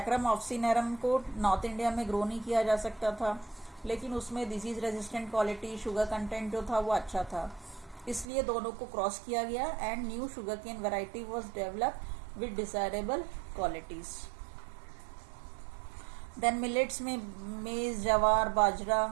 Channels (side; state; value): left; drops out; at 8.2 s